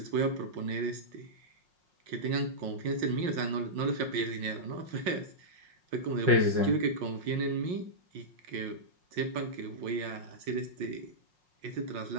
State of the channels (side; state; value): left; late; 5.5 ms